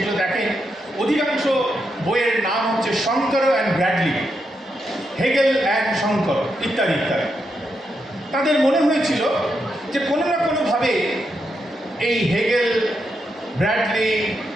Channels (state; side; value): normal; both; correlation 0.83